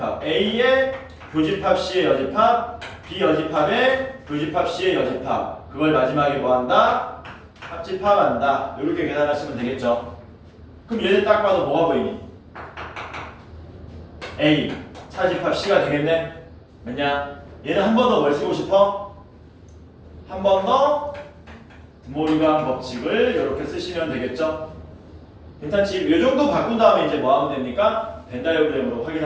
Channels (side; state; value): both; identical; correlation 1.00